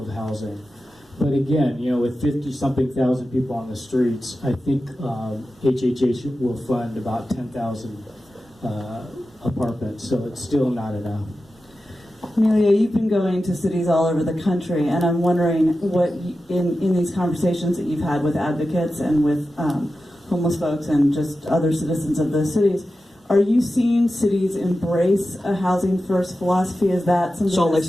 housing. But again, with 50-something thousand people on the streets, I think HHH will fund about 10,000 apartments, so it's still not enough. Emilio, you've been going to cities all over the country, and I'm wondering what, in these conversations that you've had with advocates and with homeless folks and just other citizens of those cities, are you seeing cities embrace a housing first philosophy? Is that something? Salt Lake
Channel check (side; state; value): both; normal; correlation 0.92